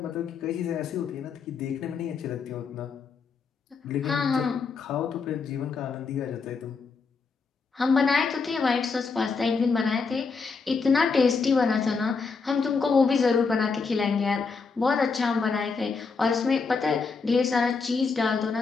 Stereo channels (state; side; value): quieter; right; 4.9 dB